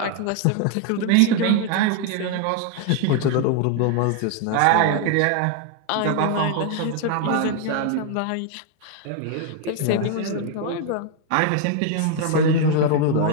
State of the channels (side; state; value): both; different; correlation 0.00